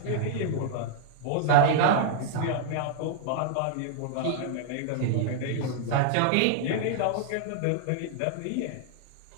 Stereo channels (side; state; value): both; different; correlation -0.01